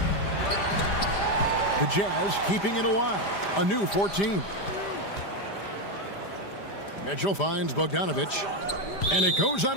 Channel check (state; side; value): late; right; 5.0 ms